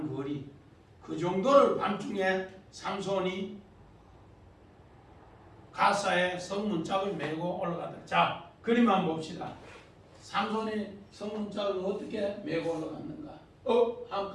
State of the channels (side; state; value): both; identical; correlation 1.00